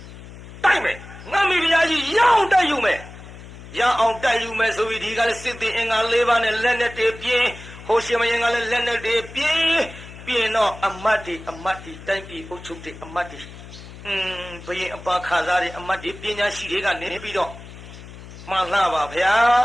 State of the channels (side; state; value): left; noise; hum, 16 dB below the sound